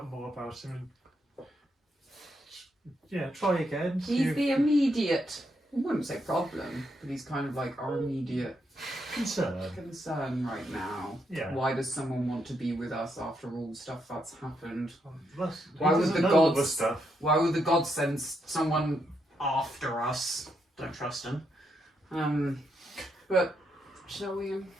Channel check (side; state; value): both; normal; correlation 0.79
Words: more about him. And, yeah, try again. see He's if- the immediate, I wouldn't say problem, but he's kind of like our immediate concern right now. Yeah. Why does someone want to be with us after all the stuff that's happened? Why Why would would the know all gods- this stuff? Why would the gods send someone after us? Don't trust him. But shall we?